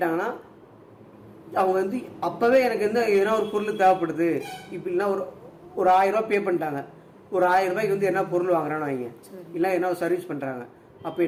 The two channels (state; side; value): identical; both; correlation 1.00